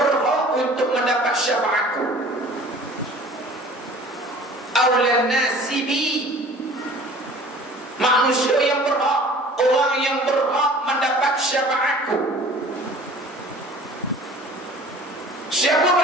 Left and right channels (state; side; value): normal; both; correlation 0.47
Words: untuk mendapat syafaatku, awla an-nasi bi, manusia yang berhak, orang yang berhak mendapat syafaatku. Siapa